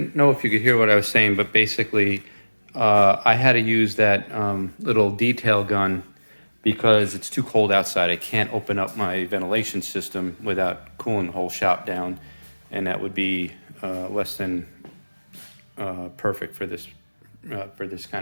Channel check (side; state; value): both; inverted; correlation -1.00